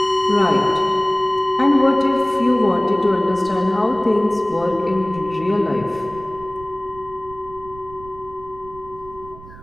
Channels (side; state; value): right; noise; rumble, 18 dB below the sound